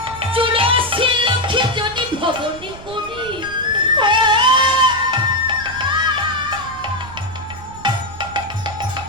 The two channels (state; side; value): noise; right; rumble, 17 dB below the sound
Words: চুরাশি লক্ষে যদি ভবনে করি